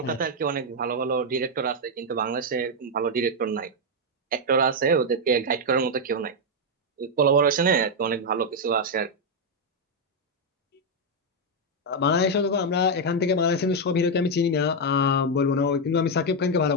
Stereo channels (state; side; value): normal; both; correlation 0.01